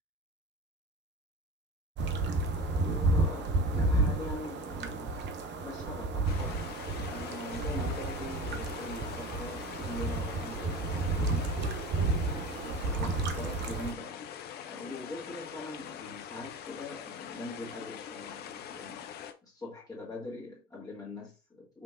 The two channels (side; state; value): both; normal; correlation 0.32